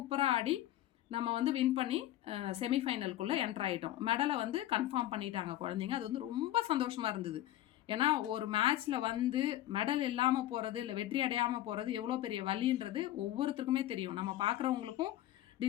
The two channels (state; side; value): quieter; right; 14.0 dB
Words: ஆடி நம்ம வந்து வின் பண்ணி செமிஃபைனலுக்குள்ளே என்ட்ரு ஆகிட்டோம். மெடலை வந்து கன்ஃபார்ம் பண்ணிட்டாங்க குழந்தைங்க. அது வந்து ரொம்ப சந்தோஷமாக இருந்தது. ஏன்னா ஒரு மேட்ச்சில் வந்து மெடல் இல்லாமல் போகிறது, இல்லை வெற்றி அடையாமல் போகிறது எவ்வளோ பெரிய வலின்றது ஒவ்வொருத்தருக்குமே தெரியும். நம்ம பார்க்குறவங்களுக்கும்